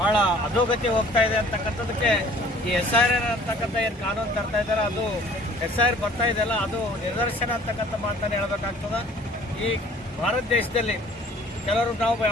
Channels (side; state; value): both; normal; correlation 0.52